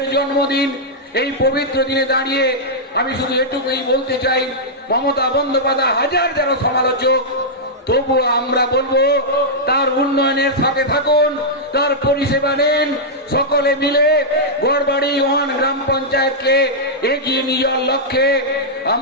জন্মদিন, এই পবিত্র দিনে দাঁড়িয়ে আমি শুধু এটুকুই বলতে চাই, মমতা বন্দ্যোপাধ্যায় হাজার যারা সমালোচক, তবুও আমরা বলবো তার উন্নয়নের সাথে থাকুন, তার পরিষেবা নেন, সকলে মিলে গড়বাড়ি 1 গ্রাম পঞ্চায়েতকে এগিয়ে নিয়ে যাওয়ার লক্ষ্যে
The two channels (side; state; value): both; normal; correlation -0.08